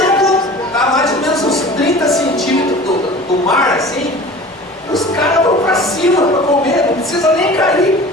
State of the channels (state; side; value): normal; both; correlation 0.40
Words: está mais ou menos uns 30 centímetros do mar assim, os caras vão para cima para comer, não precisa nem cair.